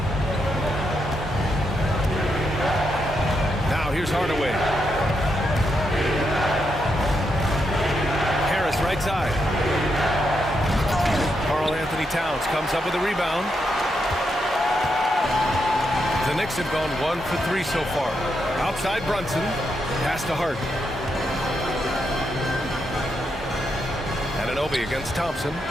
Now here's Hardaway. Harris right side. Karl-Anthony Towns comes up with a rebound. The Knicks have gone 1 for 3 so far. Outside Brunson. Pass to Hart. Anunoby against Thompson.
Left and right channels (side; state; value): both; normal; correlation 0.82